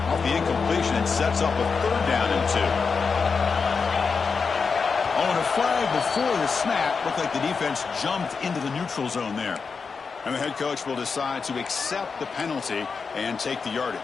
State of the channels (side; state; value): right; quieter; 5.2 dB